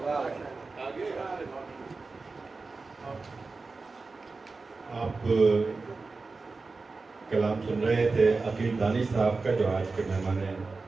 آپ کلام سن رہے تھے عقیل دانش صاحب کا, جو آج کے مہمان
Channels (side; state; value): left; quieter; 4.0 dB